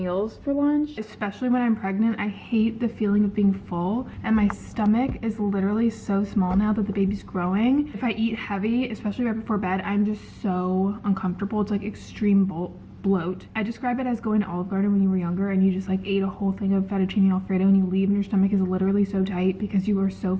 for lunch, especially when I'm pregnant. I hate the feeling of being full, and my stomach is literally so small now that the baby's growing. If I eat heavy, especially right before bed, I'm just so uncomfortable. It's like extreme bloat. I describe it as going to Olive Garden when you were younger and you just like ate a whole thing of fettuccine alfredo and you leave and your stomach is literally so tight because you are so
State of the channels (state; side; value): identical; both; correlation 1.00